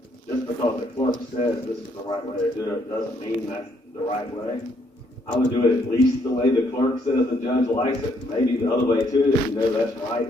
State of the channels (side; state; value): both; normal; correlation 0.70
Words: just because the clerk says this is the right way to do it doesn't mean that's the right way. I would do it at least the way the clerk says the judge likes it, maybe the other way too, if you know that's right